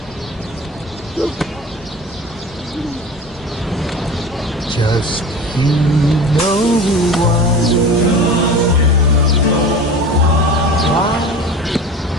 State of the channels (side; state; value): both; normal; correlation 0.35